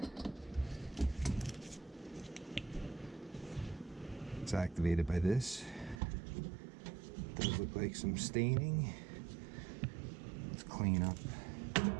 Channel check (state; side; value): drops out; left; at 6.0 s